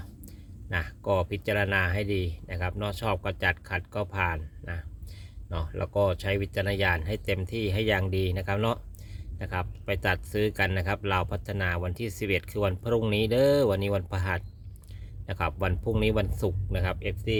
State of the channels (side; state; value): both; identical; correlation 1.00